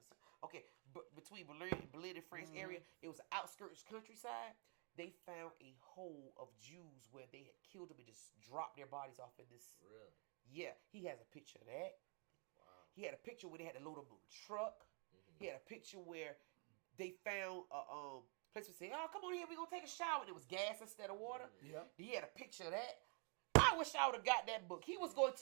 Okay, but between Berlin and France area, it was the outskirts countryside. They found a hole of Jews where they had killed them and just dropped their bodies off in this. Really? Yeah, he has a picture of that. Wow. He had a picture where they had to load them on a truck. He had a picture where they found a place to say, "Oh, come on here, we're gonna take a shower." And it was gas instead of water. Yeah. He had a picture of that. I wish I would have got that book. He was going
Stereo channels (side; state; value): left; quieter; 37.2 dB